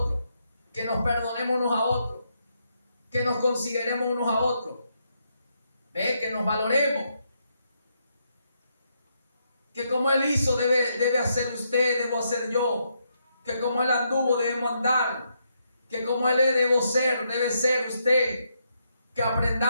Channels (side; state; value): both; inverted; correlation -0.79